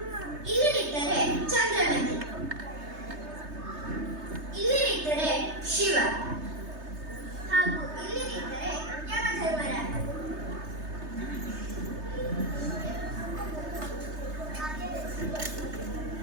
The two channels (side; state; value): left; late; 3.3 ms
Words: ಇಲ್ಲಿ ನಿಂತರೆ ಚಂದ್ರಮತಿ, ಇಲ್ಲಿ ನಿಂತರೆ ಶಿವ, ಹಾಗೂ ಇಲ್ಲಿ ನಿಂತರೆ ಯಮಧರ್ಮರಾಜ.